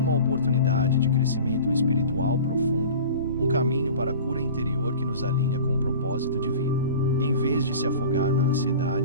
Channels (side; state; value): both; inverted; correlation -0.39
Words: oportunidade de crescimento espiritual profundo, um caminho para a cura interior que nos alinha com o propósito divino. Em vez de se afogar na